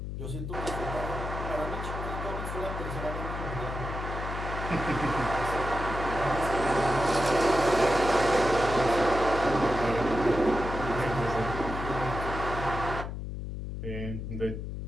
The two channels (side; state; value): left; noise; hum, 6 dB below the sound